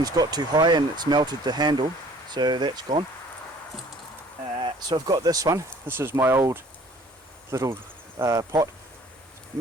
got too high and it's melted the handle, so that's gone. So I've got this one. This is my old little pot,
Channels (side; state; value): both; normal; correlation 0.53